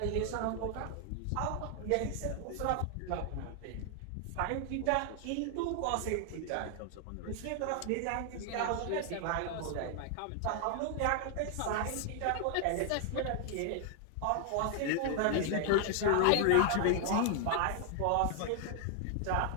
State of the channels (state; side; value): different; both; correlation 0.00